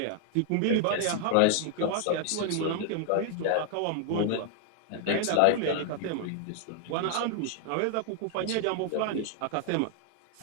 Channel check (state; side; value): different; both; correlation 0.00